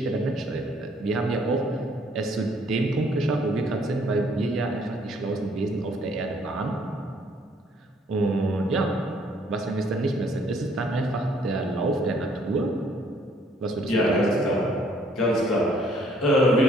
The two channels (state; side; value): normal; both; correlation 0.63